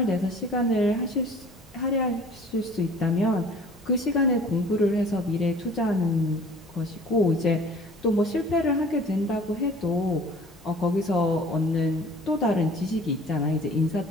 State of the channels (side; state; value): both; normal; correlation 0.48